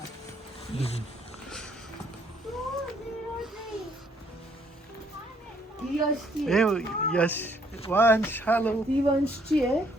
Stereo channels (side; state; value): both; normal; correlation 0.67